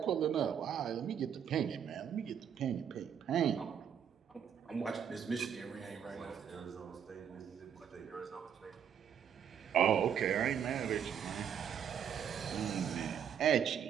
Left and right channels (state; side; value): quieter; left; 8.3 dB